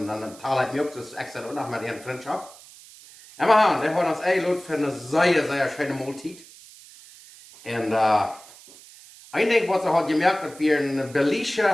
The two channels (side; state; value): right; noise; hiss, 21 dB below the sound